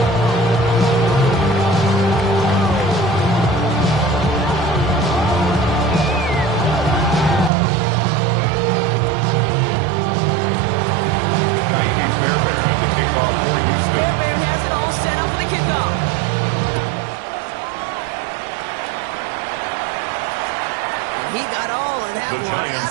He got all of that The one Giants out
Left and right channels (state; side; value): drops out; left; at 7.5 s